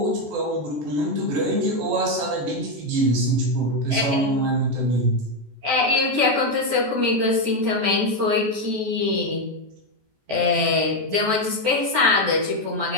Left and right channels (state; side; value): late; left; 14 ms